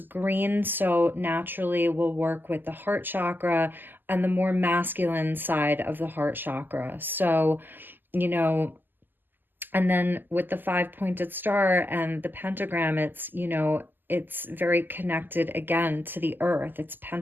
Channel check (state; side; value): late; left; 0.090 ms